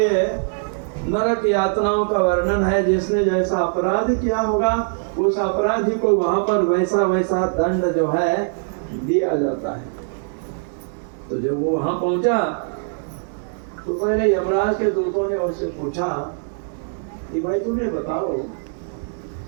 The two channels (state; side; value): silent; left; digital silence